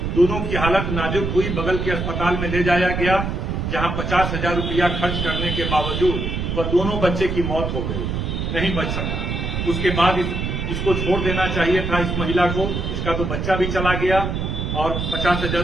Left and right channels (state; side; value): noise; right; rumble, 2 dB below the sound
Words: दोनों की हालत नाजुक हुई, बगल के अस्पताल में ले जाया गया, जहां 50,000 रुपया खर्च करने के बावजूद वह दोनों बच्चे की मौत हो गई, नहीं बच सका। उसके बाद इसको छोड़ देना चाहिए था इस महिला को। इसका तो बच्चा भी चला गया, और 50,000